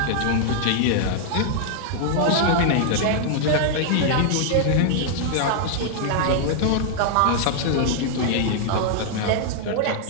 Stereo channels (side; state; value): both; different; correlation -0.01